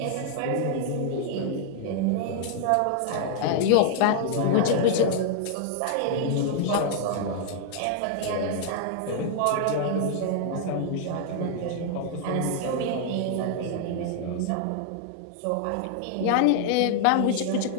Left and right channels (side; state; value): both; different; correlation -0.01